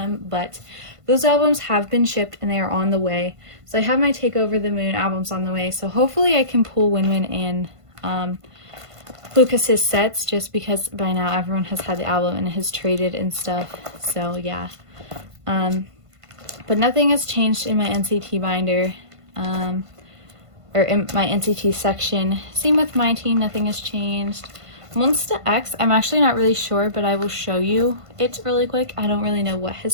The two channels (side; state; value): left; late; 1.5 ms